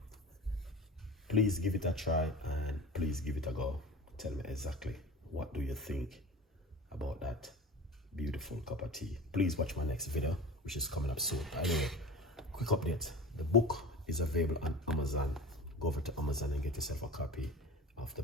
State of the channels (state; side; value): normal; both; correlation 0.35